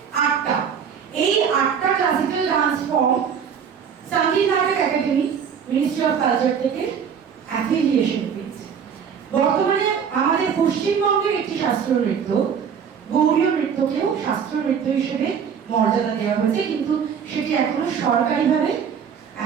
8টা। এই 8টা ক্লাসিক্যাল ডান্স ফর্ম সঙ্গীত নাটক একাডেমি, মিনিস্ট্রি অফ কালচার থেকে অ্যাফিলিয়েশন পেয়েছে। বর্তমানে আমাদের পশ্চিমবঙ্গের একটি শাস্ত্রীয় নৃত্য, গৌড়ীয় নৃত্যকেও শাস্ত্রীয় নৃত্য হিসেবে মর্যাদা দেওয়া হয়েছে, কিন্তু সেটি এখনো সরকারিভাবে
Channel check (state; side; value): quieter; left; 7.3 dB